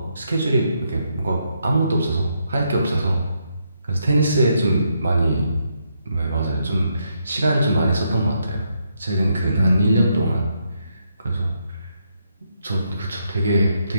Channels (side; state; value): both; inverted; correlation -0.78